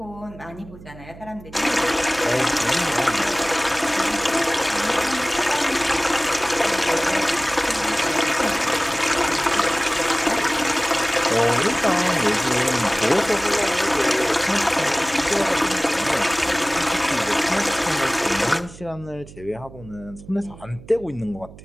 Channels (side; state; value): right; noise; hum, 18 dB below the sound